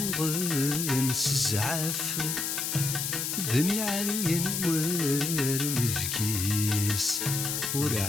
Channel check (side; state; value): left; noise; hiss, 1 dB below the sound